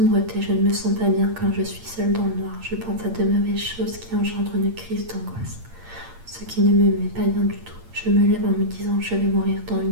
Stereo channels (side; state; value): left; late; 8.7 ms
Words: je ne me sens pas bien quand je suis seule dans le noir. Je pense à de mauvaises choses qui engendrent une crise d'angoisse. Ce qui ne me met pas bien du tout. Je me lève en me disant je vais mourir dans une